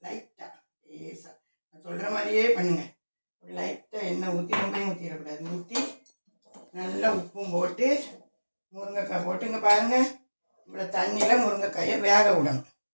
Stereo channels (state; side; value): inverted; both; correlation -1.00